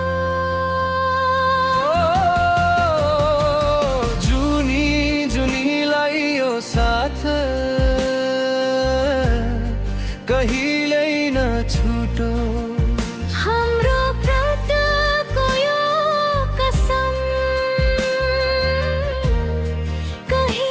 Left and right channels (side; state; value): both; identical; correlation 1.00